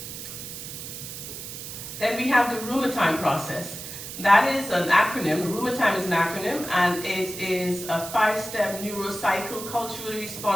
Then we have the Roomertime process. That is an acronym. Roomertime is an acronym, and it is a 5-step neurocycle, culturally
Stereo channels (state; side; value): noise; right; hiss, 9 dB below the sound